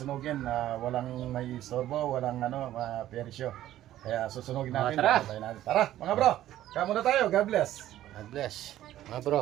Walang may istorbo, walang persyo. Kaya susunugin natin. Tara. Tara mga bro. Kaya muna tayo. God bless. God bless. Mga bro.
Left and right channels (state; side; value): quieter; left; 13.3 dB